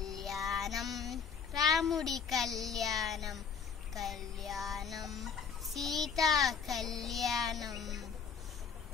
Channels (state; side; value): quieter; right; 6.3 dB